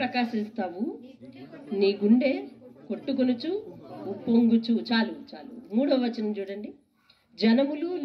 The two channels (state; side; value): identical; both; correlation 1.00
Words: నీ గుండె కొట్టుకొనుచు ఉప్పొంగుచు. చాలు. 3వ వచనం చూడండి. జనములు